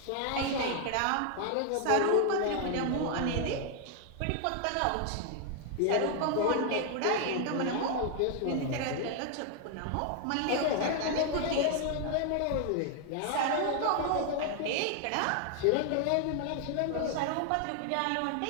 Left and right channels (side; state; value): both; different; correlation 0.00